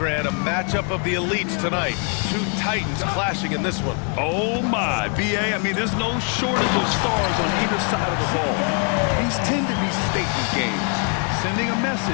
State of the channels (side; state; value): right; quieter; 39.4 dB